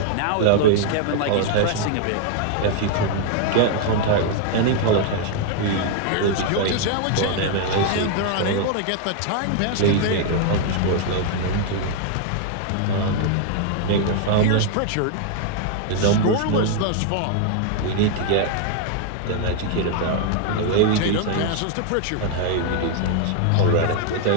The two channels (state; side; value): different; both; correlation 0.00